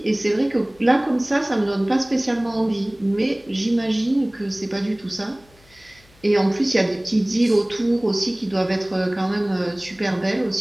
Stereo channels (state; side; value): noise; left; hum, 29 dB below the sound